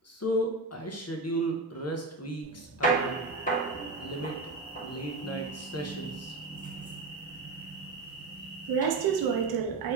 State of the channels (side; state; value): left; quieter; 3.7 dB